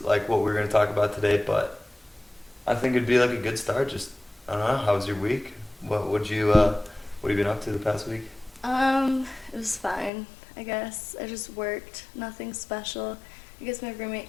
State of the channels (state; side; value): drops out; right; at 10.1 s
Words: what we were going to talk about today, but I think it'd be a good start. Just, I don't know, how was your week? What have you been up to the past week? It was fine, I guess. I just worked, nothing special. I guess my roommate